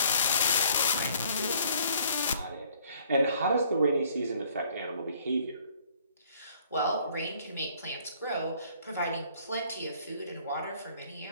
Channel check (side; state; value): both; inverted; correlation -0.60